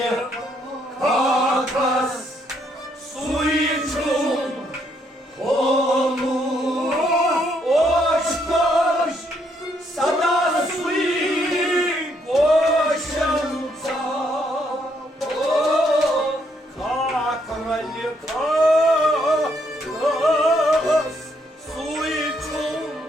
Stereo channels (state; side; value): normal; both; correlation 0.72